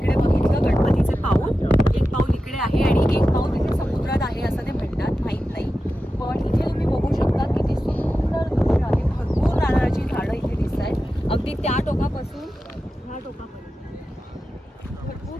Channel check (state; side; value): normal; both; correlation 0.92